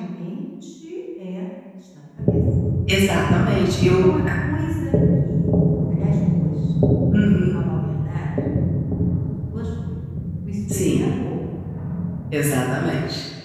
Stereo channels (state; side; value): identical; both; correlation 1.00